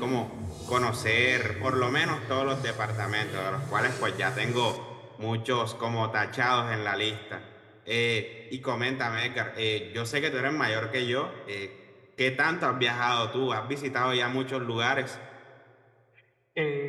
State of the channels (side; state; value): both; identical; correlation 1.00